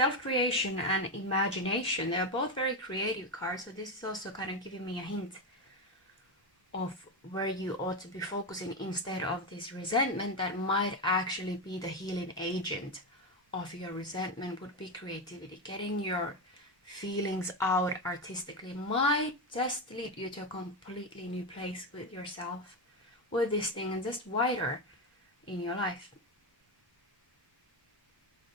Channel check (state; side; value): normal; both; correlation 0.12